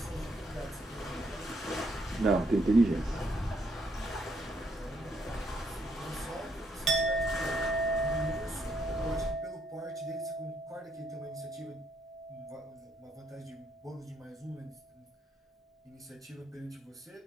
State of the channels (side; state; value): both; normal; correlation 0.74